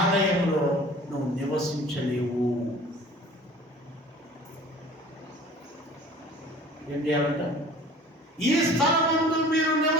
నువ్వు నివసించలేవు. ఏం చేయాలంట? ఈ స్థలమందు మీరు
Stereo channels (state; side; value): normal; both; correlation 0.46